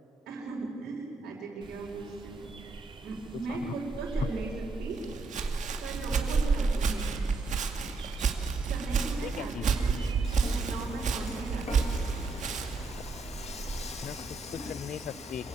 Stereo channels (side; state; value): left; quieter; 3.6 dB